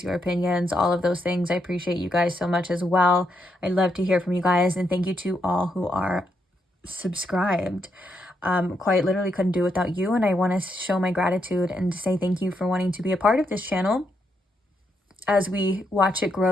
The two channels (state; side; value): normal; both; correlation 0.79